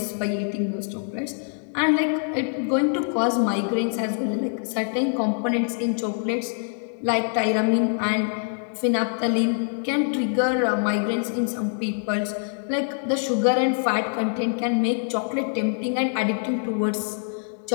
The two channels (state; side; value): silent; right; digital silence